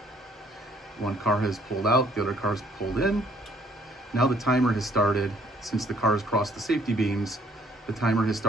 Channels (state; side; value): normal; both; correlation 0.63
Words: One car has pulled out, the other car's pulled in. Now the timer has started. Since the car has crossed the safety beams, the timer has